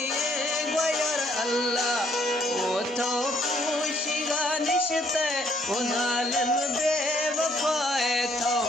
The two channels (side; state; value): both; normal; correlation 0.67